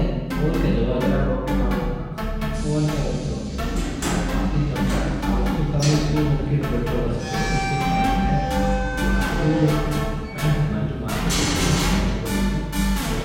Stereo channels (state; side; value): identical; both; correlation 1.00